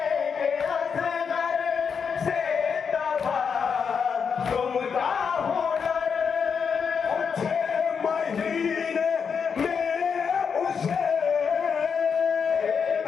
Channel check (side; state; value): right; quieter; 6.3 dB